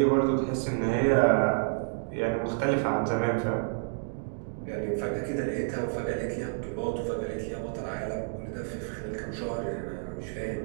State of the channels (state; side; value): silent; left; digital silence